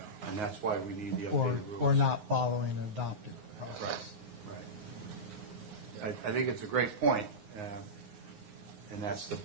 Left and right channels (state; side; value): late; left; 9.6 ms